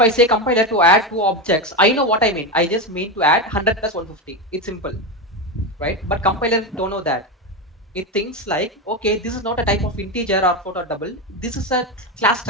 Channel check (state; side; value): normal; both; correlation 0.15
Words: say compiler to add two objects, I know what I mean. I just mean to add 100 plus 150. It's simple, right? But compiler don't know that. It thinks like, okay, this is not a type of integer or float or double. This is a class